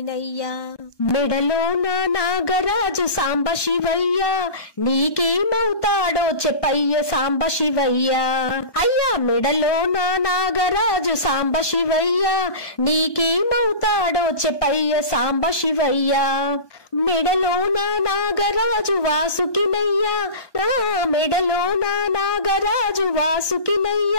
మెడలో నా నాగరాజు సాంబ శివయ్య నీకేమవుతాడో చెప్పయ్య సాంబ శివయ్య అయ్యా మెడలో నా నాగరాజు సాంబ శివయ్య నీకేమవుతాడో చెప్పయ్య సాంబ శివయ్య మెడలో నా నాగరాజు వాసుకినయ్యా నా మెడలో నా నాగరాజు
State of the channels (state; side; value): late; right; 1.2 ms